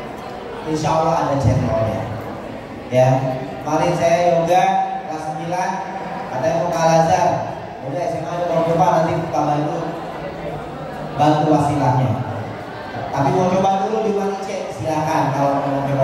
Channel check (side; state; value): both; identical; correlation 1.00